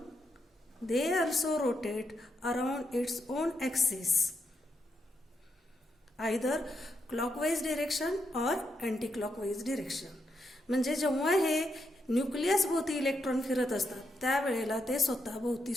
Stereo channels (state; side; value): normal; both; correlation 0.81